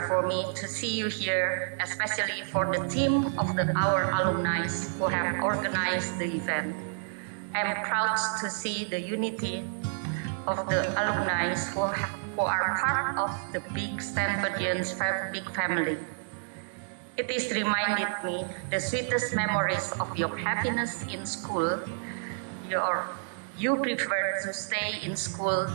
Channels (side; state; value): left; silent; digital silence